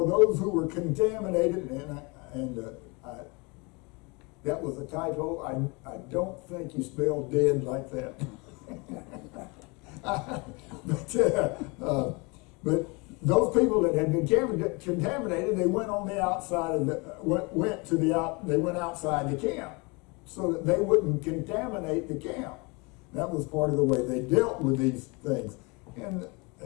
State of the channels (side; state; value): right; quieter; 28.6 dB